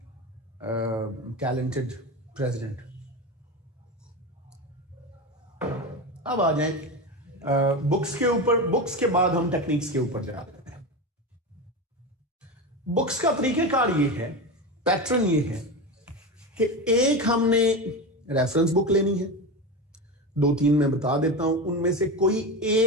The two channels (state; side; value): normal; both; correlation 0.21